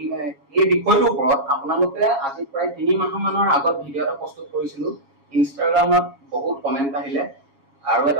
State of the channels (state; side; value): late; left; 7.2 ms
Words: বিষয়টোৰ ওপৰত আপোনালোকে আজি প্ৰায় 3 মাহমানৰ আগত ভিডিঅ' এটা প্ৰস্তুত কৰিছিলো। ইনষ্টাগ্ৰামত বহুত কমেণ্ট আহিলে আৰু